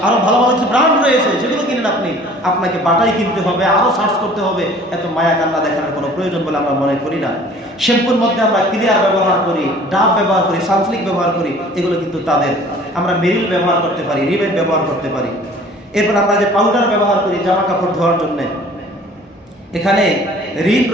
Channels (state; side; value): normal; both; correlation 0.50